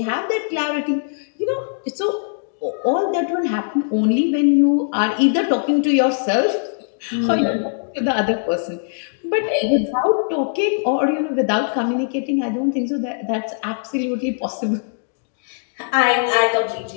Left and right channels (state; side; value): silent; right; digital silence